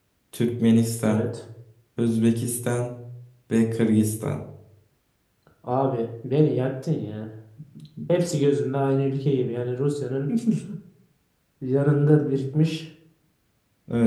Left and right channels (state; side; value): identical; both; correlation 1.00